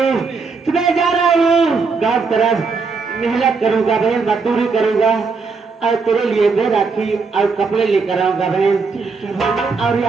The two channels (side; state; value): left; quieter; 4.7 dB